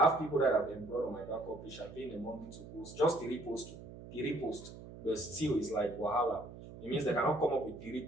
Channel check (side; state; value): right; noise; hum, 14 dB below the sound